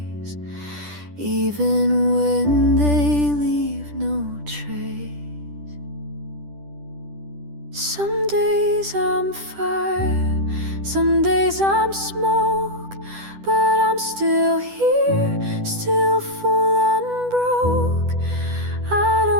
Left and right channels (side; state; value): left; late; 10 ms